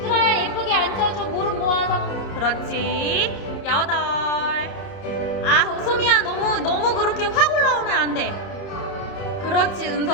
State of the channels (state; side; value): late; right; 30 ms